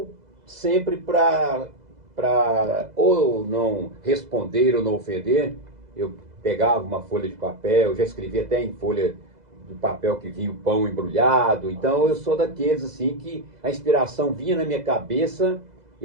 sempre para ou não responder ou não ofender, eu pegava uma folha de papel, eu já escrevi até em folha de papel que vinha o pão embrulhado. Então eu sou daqueles assim que a inspiração vinha na minha cabeça,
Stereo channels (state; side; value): late; left; 2.0 ms